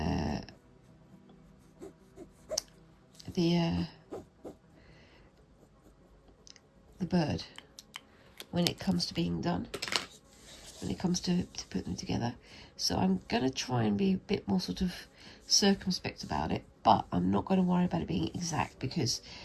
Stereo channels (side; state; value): both; identical; correlation 1.00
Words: bird when it comes to being done, when it comes to put them together. So I'm going to try and be a bit more sort of circumspect about it, but I'm not going to worry about it being exact because,